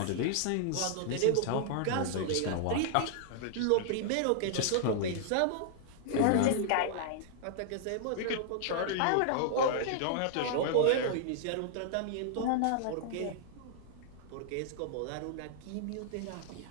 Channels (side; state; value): both; different; correlation -0.01